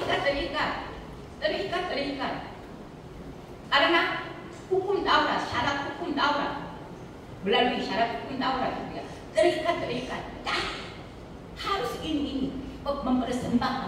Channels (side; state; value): both; identical; correlation 1.00